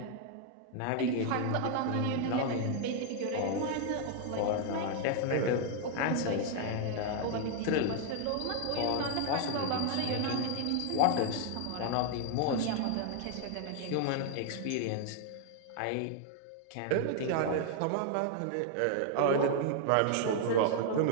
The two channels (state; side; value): different; both; correlation 0.00